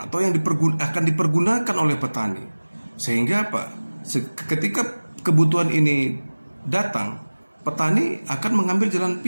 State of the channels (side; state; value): both; inverted; correlation -1.00